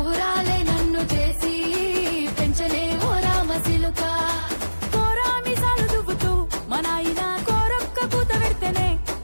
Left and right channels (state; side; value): inverted; both; correlation -1.00